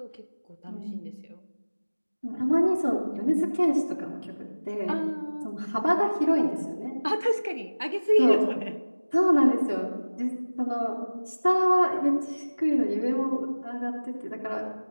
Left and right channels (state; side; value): inverted; both; correlation -1.00